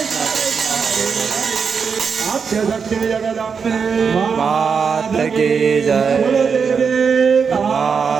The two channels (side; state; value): left; quieter; 6.0 dB